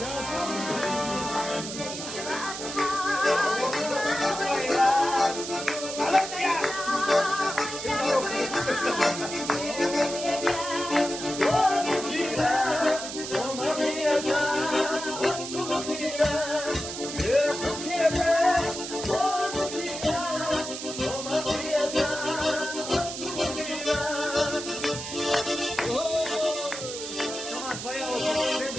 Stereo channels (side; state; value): right; noise; hiss, 7 dB below the sound